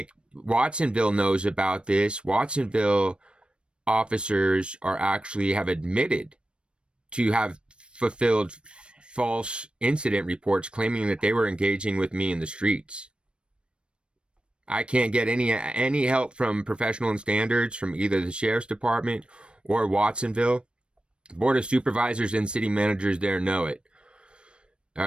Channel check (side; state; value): left; late; 0.057 ms